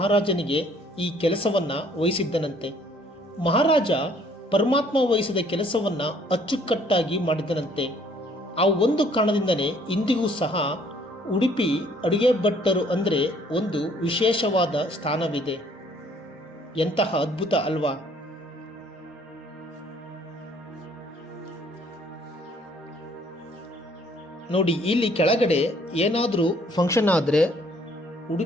ಈ ಕೆಲಸವನ್ನು ವಹಿಸಿದ್ದನಂತೆ. ಮಹಾರಾಜ ಪರಮಾತ್ಮ ವಹಿಸಿದ ಕೆಲಸವನ್ನು ಅಚ್ಚುಕಟ್ಟಾಗಿ ಮಾಡಿದ್ದನಂತೆ. ಆ ಒಂದು ಕಾರಣದಿಂದಲೇ ಇಂದಿಗೂ ಸಹ ಉಡುಪಿ ಅಡುಗೆ ಭಟ್ಟರು ಅಂದರೆ ಒಂದು ವಿಶೇಷವಾದ ಸ್ಥಾನವಿದೆ. ಎಂತಹ ಅದ್ಭುತ ಅಲ್ವಾ? ನೋಡಿ, ಇಲ್ಲಿ ಕೆಳಗಡೆ ಏನಾದರೂ ಫಂಕ್ಷನ್ ಆದರೆ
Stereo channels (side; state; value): both; normal; correlation 0.61